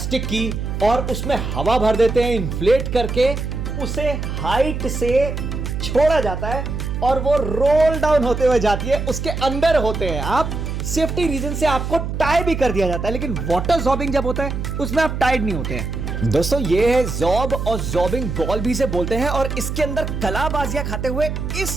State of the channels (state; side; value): noise; right; hum, 4 dB below the sound